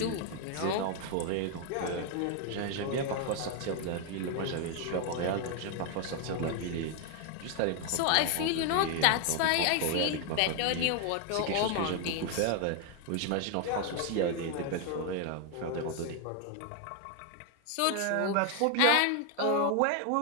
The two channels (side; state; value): both; different; correlation 0.00